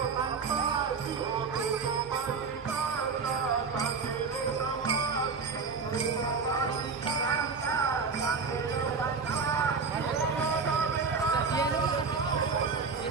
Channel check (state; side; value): quieter; left; 4.9 dB